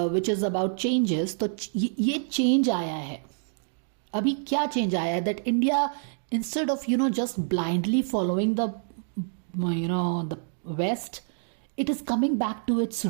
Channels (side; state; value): left; silent; digital silence